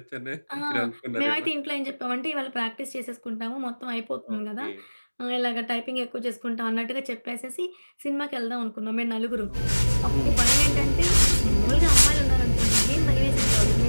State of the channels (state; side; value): inverted; both; correlation -1.00